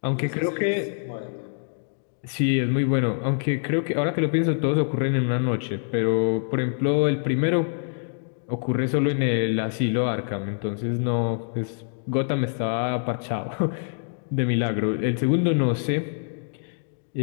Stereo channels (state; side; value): silent; right; 60 dB below the other